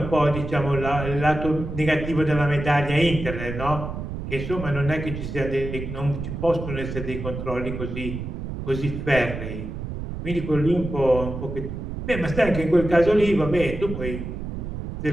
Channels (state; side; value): noise; right; rumble, 6 dB below the sound